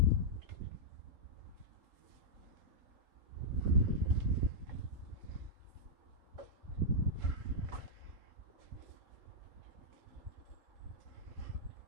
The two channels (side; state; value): left; late; 3.8 ms